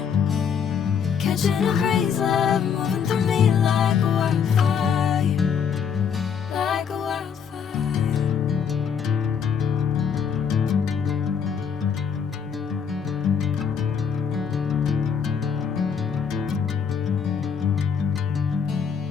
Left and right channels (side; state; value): right; quieter; 7.0 dB